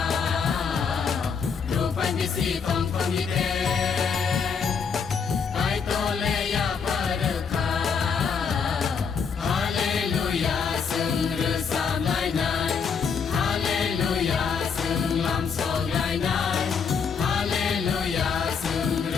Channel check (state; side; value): quieter; right; 6.1 dB